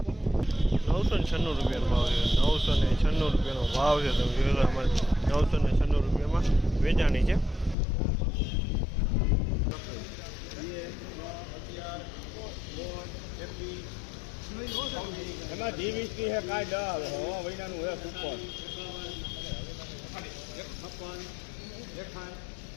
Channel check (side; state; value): right; drops out; at 7.8 s